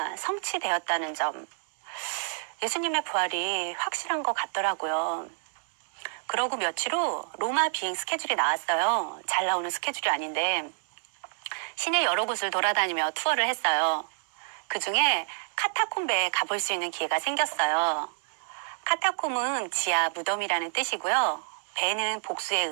성취되었다는 점. 예수님의 부활이 확실한 것 같더라고요. 그러고 며칠 후 로마 비행 스케줄이 나왔어요. 잘 나오는 스케줄이 아닌데 시내 여러 곳을 돌아다니며 투어를 했어요. 그중에 카타콤베에 가볼 수 있는 기회가 생겼어요. 카타콤은 지하 무덤이라는 뜻이고요. 베는 복수의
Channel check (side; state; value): left; silent; digital silence